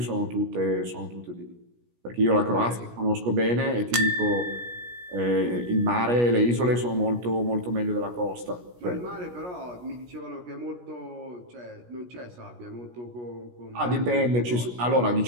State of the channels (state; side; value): late; left; 17 ms